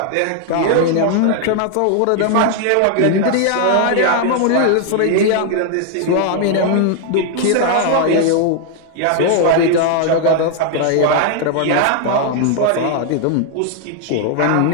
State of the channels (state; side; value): different; both; correlation 0.00